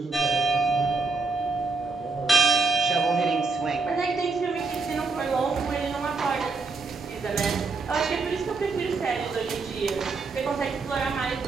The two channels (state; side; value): quieter; left; 4.0 dB